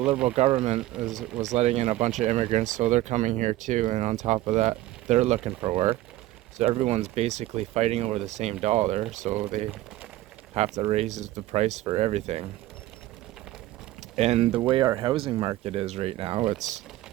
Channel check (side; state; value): left; quieter; 15.8 dB